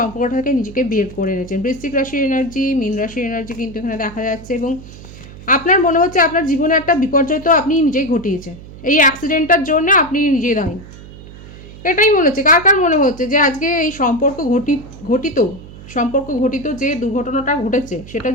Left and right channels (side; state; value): right; noise; hum, 17 dB below the sound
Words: থেকে নিজেকে বের করে এনেছেন। বৃশ্চিক রাশির এনার্জি, মীন রাশির এনার্জি কিন্তু এখানে দেখা যাচ্ছে। এবং আপনার মনে হচ্ছে আপনার জীবনে একটা বিপর্যয় তো আপনি নিজেই ঘটিয়েছেন, এই অ্যাক্সিডেন্টটার জন্য আপনি নিজেই দায়ী। এটাই মনে হচ্ছে। কার কার মনে হচ্ছে যে আজকে এই সম্পর্ক ঘটিত সম্পর্ক ঘটিত যে দুর্ঘটনাটা ঘটেছে সেটার